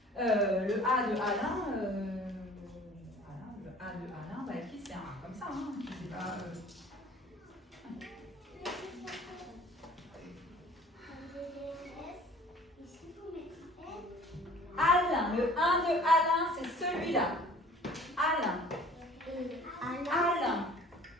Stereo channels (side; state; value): both; normal; correlation 0.49